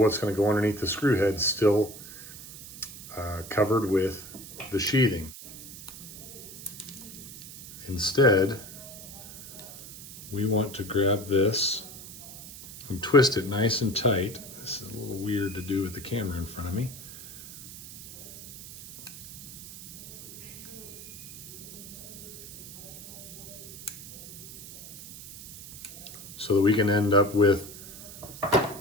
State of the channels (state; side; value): noise; right; hiss, 14 dB below the sound